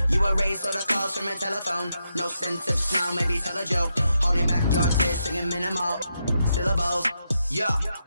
You erase all the calls from a telephone. No sense of smile, maybe tell a joke. Holding back your tears, singing minimal syllables. Yeah,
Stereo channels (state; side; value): inverted; both; correlation -0.84